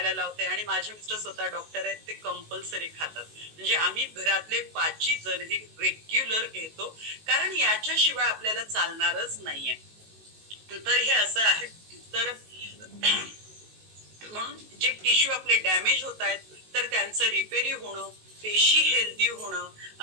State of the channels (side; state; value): left; late; 19 ms